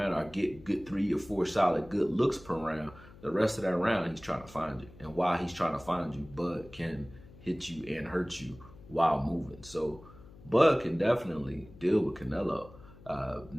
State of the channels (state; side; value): noise; left; hum, 20 dB below the sound